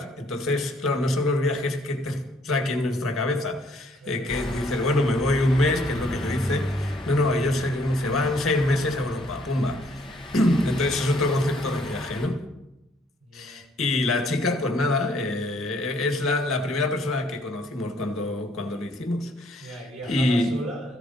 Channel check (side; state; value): both; normal; correlation 0.65